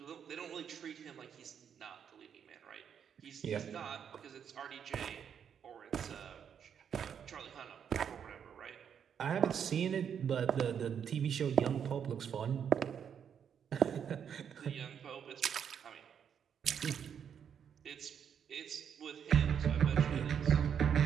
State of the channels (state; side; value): quieter; left; 8.0 dB